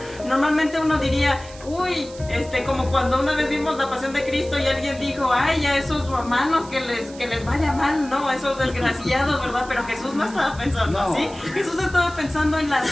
Normalmente uno diría, uy, como cuando una vez vimos la Pasión de Cristo y alguien dijo, ay, a esos romanos que les vaya mal, no, esos desgraciados, ¿verdad? Pero Jesús no estaba pensando así. Jesús estaba pensando en la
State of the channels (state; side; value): noise; right; hiss, 19 dB below the sound